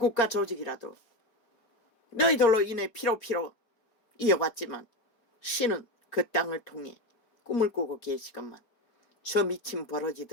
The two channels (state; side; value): late; right; 4.4 ms